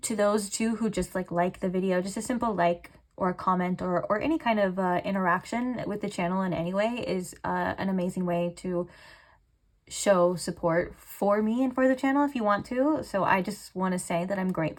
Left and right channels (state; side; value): identical; both; correlation 1.00